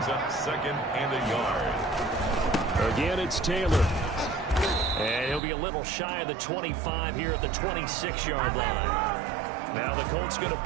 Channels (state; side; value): drops out; left; at 5.4 s